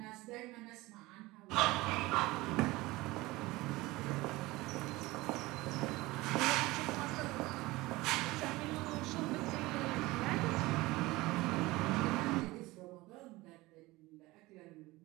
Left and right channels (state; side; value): quieter; left; 20.4 dB